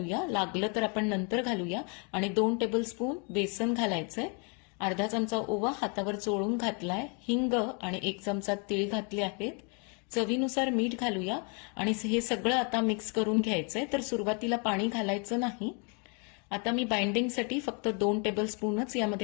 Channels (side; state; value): right; quieter; 35.3 dB